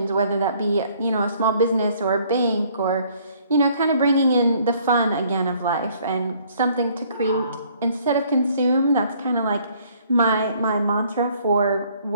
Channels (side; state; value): both; inverted; correlation -0.61